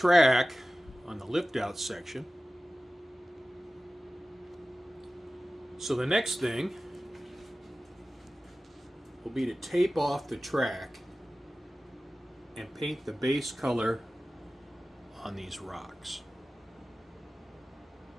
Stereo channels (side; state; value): both; normal; correlation 0.96